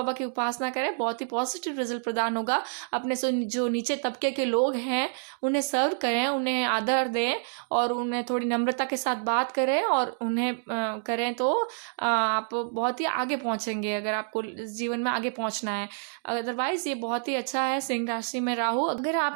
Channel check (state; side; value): silent; left; digital silence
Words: की उपासना करें, बहुत ही पॉजिटिव रिजल्ट प्रदान होगा। अपने से जो नीचे तबके के लोग हैं उन्हें सर्व करें, उन्हें आदर दें और उन्हें थोड़ी नम्रता के साथ बात करें और उन्हें करें तो आप बहुत ही आगे पहुंचेंगे, अगर आपको जीवन में आगे पहुंचना है। अदरवाइज ये बहुत ही अच्छा है सिंह राशि में राहु। अगर